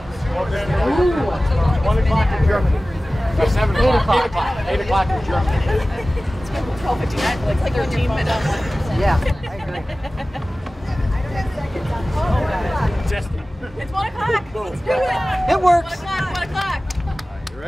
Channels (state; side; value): normal; both; correlation 0.97